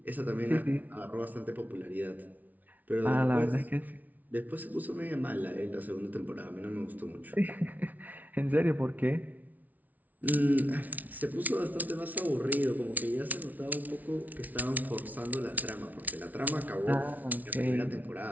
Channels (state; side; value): late; left; 0.077 ms